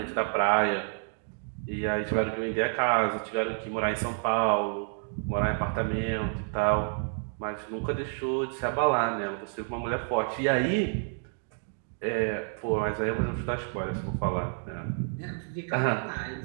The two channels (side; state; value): left; silent; 58 dB below the other